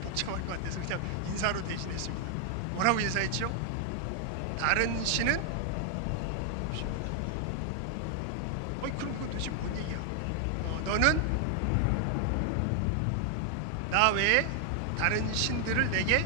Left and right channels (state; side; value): different; both; correlation 0.00